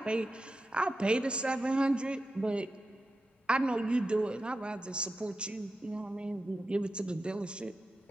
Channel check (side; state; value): both; normal; correlation 0.91